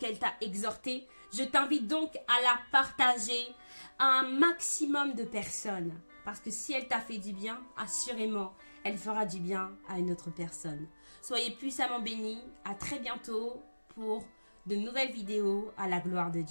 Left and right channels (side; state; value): both; inverted; correlation -1.00